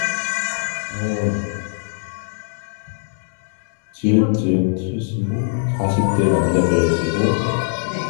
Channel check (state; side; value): silent; right; digital silence